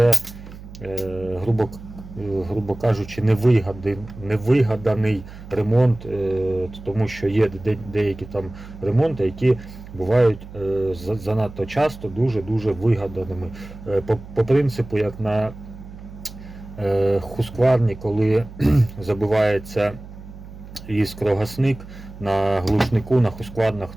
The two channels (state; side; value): noise; right; hum, 15 dB below the sound